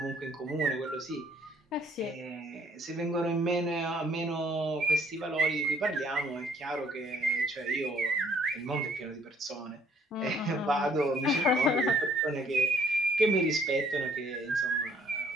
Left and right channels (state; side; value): normal; both; correlation 0.62